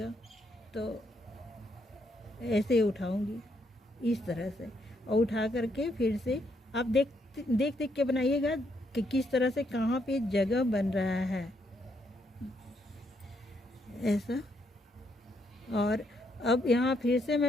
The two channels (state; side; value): normal; both; correlation 0.75